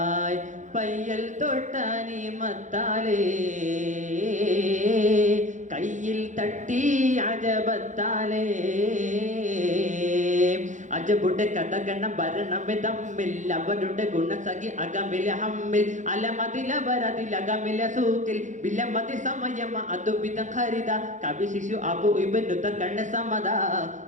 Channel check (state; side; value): late; left; 0.35 ms